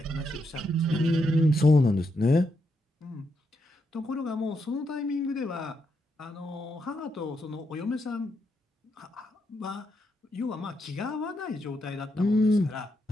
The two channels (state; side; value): normal; both; correlation 0.81